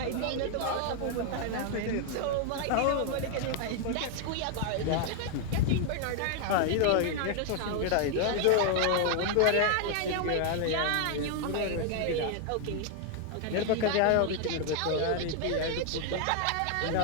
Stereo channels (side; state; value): both; different; correlation 0.00